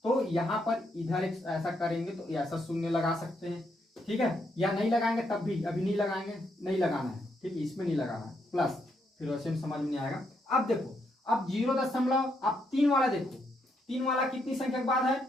तो यहाँ पर इधर एक ऐसा करेंगे तो ऐसा शून्य लगा सकते हैं। ठीक है, या नहीं लगाएंगे तब भी, अभी नहीं लगाएंगे, नहीं लगाना है। ठीक है, इसमें नहीं लगाना है प्लस, फिर वैसे में समझ में नहीं आएगा। अब देखो अब 0.3 वाला देखो, 3 वाला कितनी संख्या के बाद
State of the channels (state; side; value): normal; both; correlation 0.77